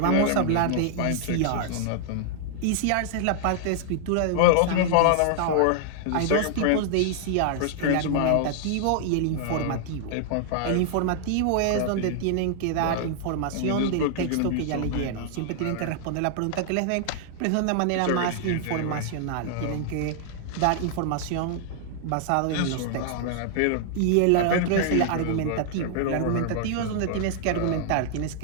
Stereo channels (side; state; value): both; different; correlation -0.01